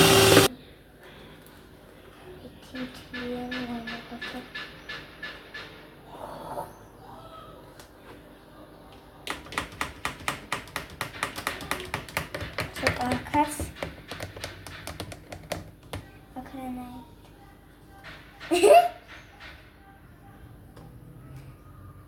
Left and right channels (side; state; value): both; identical; correlation 1.00